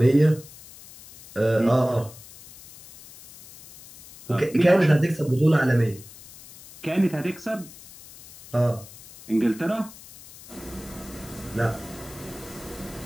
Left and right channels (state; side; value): noise; left; hiss, 19 dB below the sound